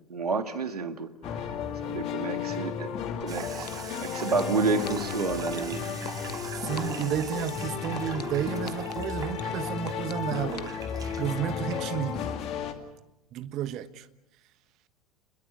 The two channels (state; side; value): normal; both; correlation 0.32